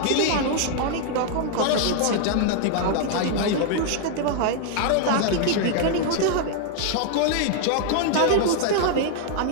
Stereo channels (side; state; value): both; different; correlation 0.00